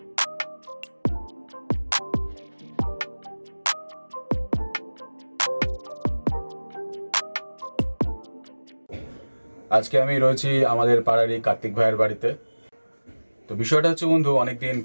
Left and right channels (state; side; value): inverted; both; correlation -1.00